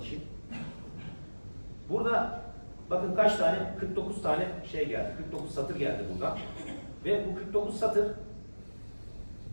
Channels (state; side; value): inverted; both; correlation -1.00